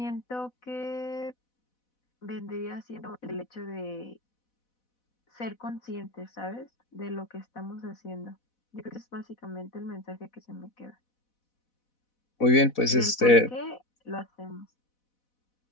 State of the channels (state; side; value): late; right; 4.1 ms